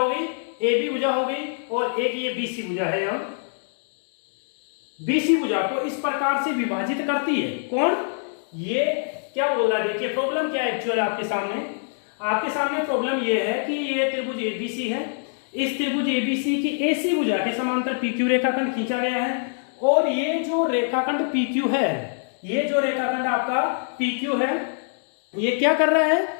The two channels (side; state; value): right; silent; digital silence